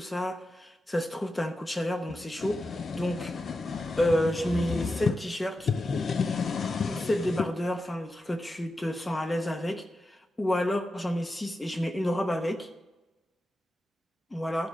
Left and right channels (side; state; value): both; normal; correlation 0.90